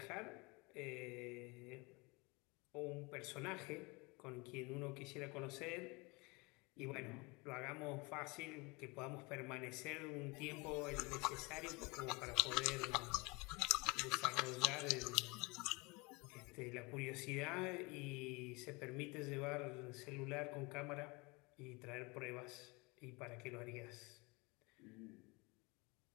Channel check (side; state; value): right; quieter; 26.7 dB